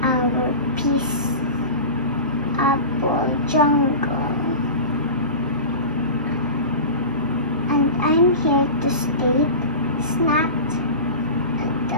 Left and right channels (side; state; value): both; inverted; correlation -0.31